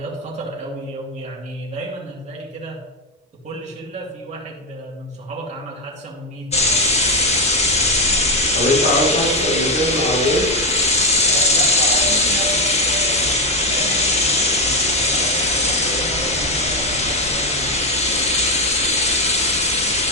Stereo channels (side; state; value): both; normal; correlation 0.08